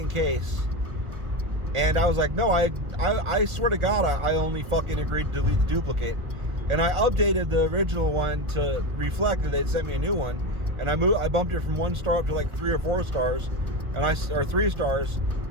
case. And I was like, no, I swear to God, I only fucking agreed to delete the duplicate. And I updated the original one to reflect that they'd sent me a new one. And I bumped it from 1 star up to like 3 or 4 stars. Or 3 stars.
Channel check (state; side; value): late; left; 1.4 ms